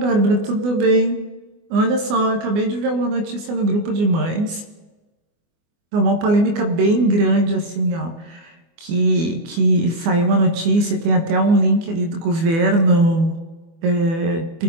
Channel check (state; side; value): late; left; 24 ms